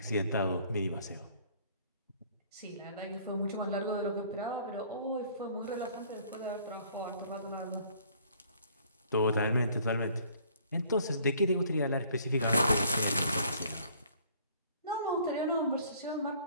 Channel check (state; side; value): inverted; both; correlation -0.57